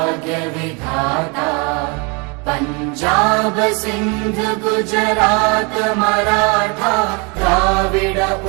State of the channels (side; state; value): left; quieter; 31.2 dB